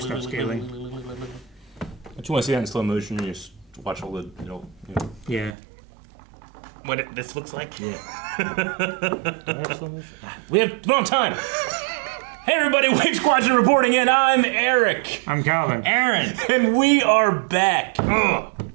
upscaling. Don't you want to see that in slow motion? You just watch all the, Yeah. What this looks like? Yeah. Do we have slow motion? We have wrong time. Hey everybody, Wave Squadron reporting in. I'm Eric. I'm Calvin. Aaron. And we are back.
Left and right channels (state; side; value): drops out; left; at 5.6 s